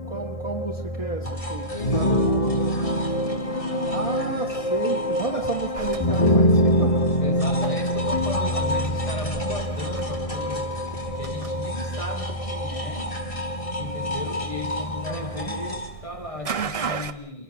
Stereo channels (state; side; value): late; right; 1.6 ms